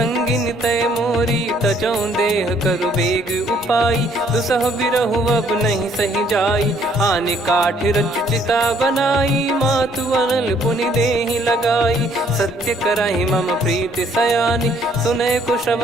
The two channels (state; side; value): normal; both; correlation 0.64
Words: तय मोरी। तजौं देह करु बेग उपाई, दुसह बिरहु अब नहीं सही जाई। आने काठ रचु चिता बनाई, मातु अनल पुनि देहि लगाई। सत्य करहि मम प्रीति सयानी, सुनय को